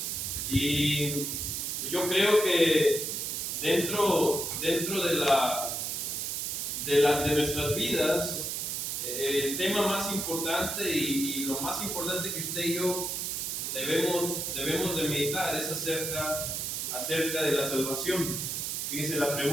Y yo creo que dentro de nuestras vidas, el tema más importante y lo más importante que usted y yo debemos de meditar es acerca de la salvación. Fíjese, la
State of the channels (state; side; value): noise; right; hiss, 2 dB below the sound